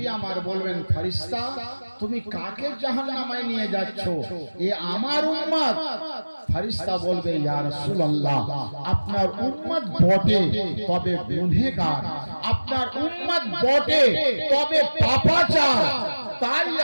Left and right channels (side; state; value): both; inverted; correlation -1.00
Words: আমার বলবেন, ফেরেশতা তুমি কাকে জাহান্নামে নিয়ে যাচ্ছ? এ আমার উম্মত। ফেরেশতা বলবে, ইয়া রাসূলুল্লাহ, আপনার উম্মত বটে তবে গুনাহগার, আপনার উম্মত বটে তবে পাপাচার। তাই